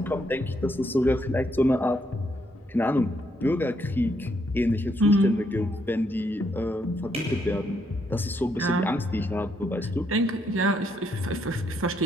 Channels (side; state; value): both; normal; correlation 0.75